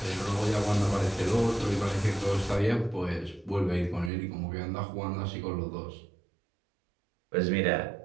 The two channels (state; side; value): drops out; left; at 4.1 s